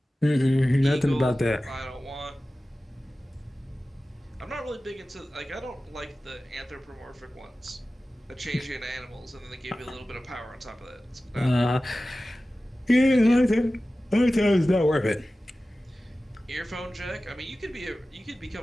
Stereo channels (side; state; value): both; normal; correlation 0.96